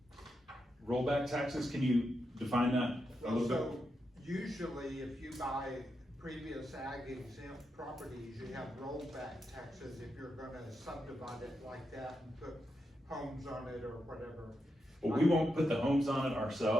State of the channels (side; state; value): both; normal; correlation 0.85